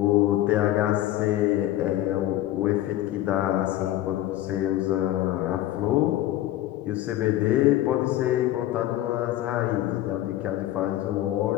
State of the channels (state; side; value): quieter; right; 14.2 dB